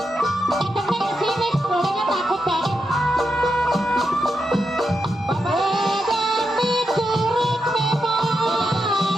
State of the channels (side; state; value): both; normal; correlation 0.86